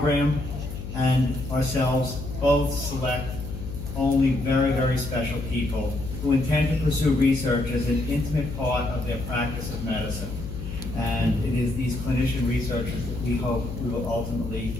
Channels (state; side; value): noise; left; hum, 8 dB below the sound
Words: and ourselves both select only very, very special people who intend to pursue research as an intimate part of their practice of medicine. And it is these clinician researchers that we hope we will ultimately